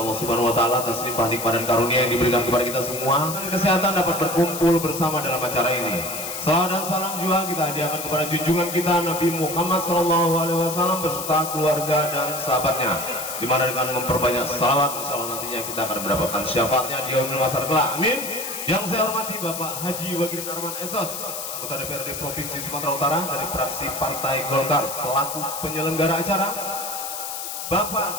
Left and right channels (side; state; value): left; noise; hiss, 6 dB below the sound